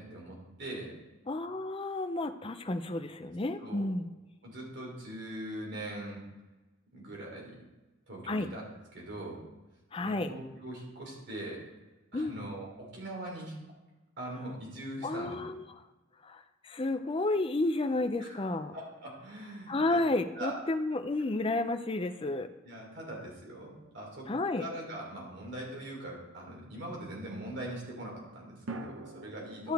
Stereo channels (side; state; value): both; normal; correlation 0.54